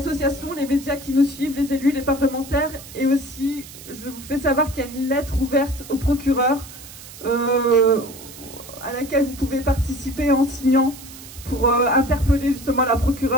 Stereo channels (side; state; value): right; noise; hiss, 16 dB below the sound